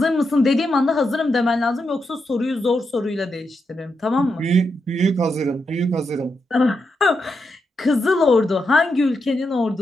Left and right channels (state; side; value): normal; both; correlation 0.85